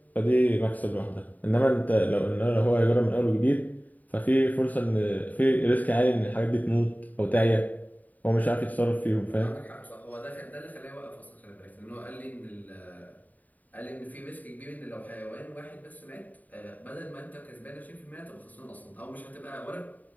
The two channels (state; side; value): late; right; 0.077 ms